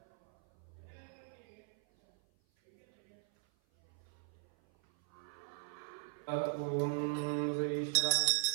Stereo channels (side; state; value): left; silent; 52 dB below the other